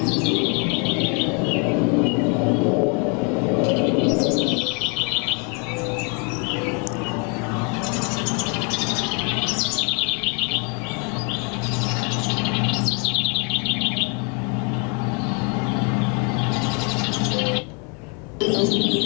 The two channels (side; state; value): right; quieter; 35.8 dB